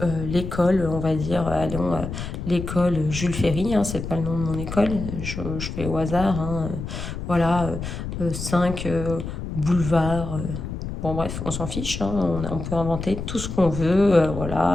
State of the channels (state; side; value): noise; left; rumble, 6 dB below the sound